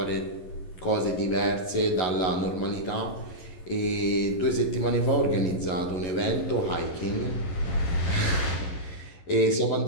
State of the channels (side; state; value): right; late; 11 ms